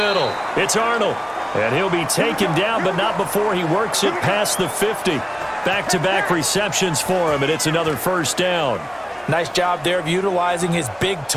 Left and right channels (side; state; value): both; identical; correlation 1.00